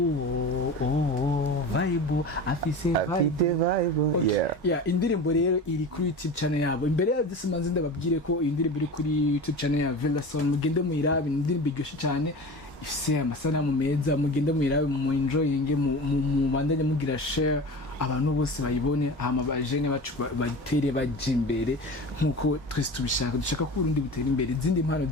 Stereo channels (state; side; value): normal; both; correlation 0.32